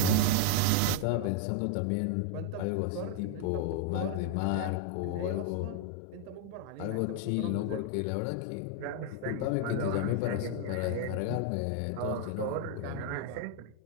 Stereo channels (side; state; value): both; different; correlation 0.00